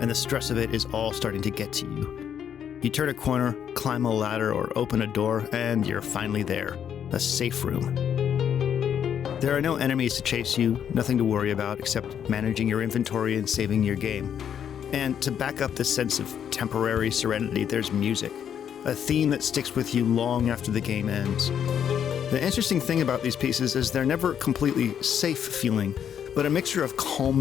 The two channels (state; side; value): quieter; right; 8.8 dB